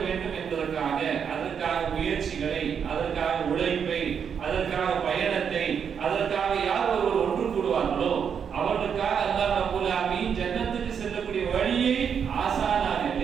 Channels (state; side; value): quieter; left; 7.3 dB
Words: வேண்டும் என்பதற்காக அதற்காக முயற்சிகளை, அதற்காக உழைப்பை, அதற்காக பயணத்தை, அதற்காக யார் ஒருவர் ஒன்று கூடுவார்களோ அவர்களுக்காக அல்லாஹ் ரப்பல் ஆலமீன் ஜன்னத்துக்கு செல்லக்கூடிய வழியை ஆசானாக